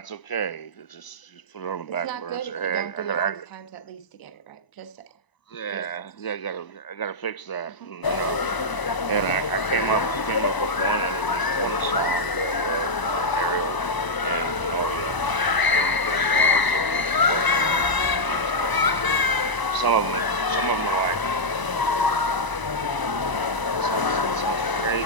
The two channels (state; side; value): late; right; 1.0 ms